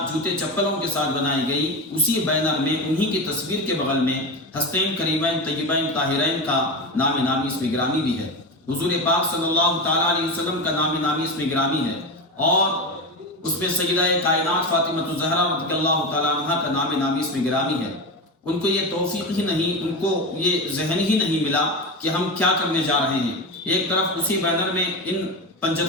جوتے چپلوں کے ساتھ بنائی گئی، اسی بینر میں انہی کی تصویر کے بغل میں ہستین کریمین طیبین طاہرین کا نام نامی اس میں گرامی بھی ہے، حضور پاک صلی اللہ تعالیٰ علیہ وسلم کا نام نامی اس میں گرامی ہے، اور اس پہ سیدہ کائنات فاطمہ الزہرا رضی اللہ تعالیٰ عنہ کا نام نامی اس میں گرامی ہے۔ ان کو یہ توفیق ہی نہیں، ان کو یہ ذہن ہی نہیں ملا کہ ہم کیا کرنے جا رہے ہیں۔ ایک طرف اسی بینر میں ان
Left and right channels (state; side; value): normal; both; correlation 0.20